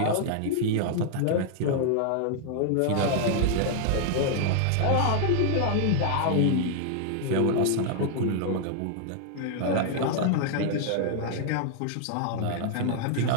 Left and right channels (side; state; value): both; different; correlation 0.00